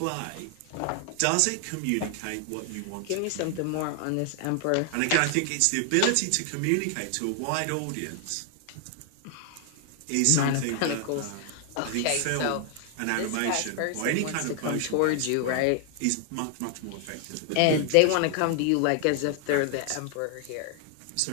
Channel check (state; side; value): different; both; correlation 0.00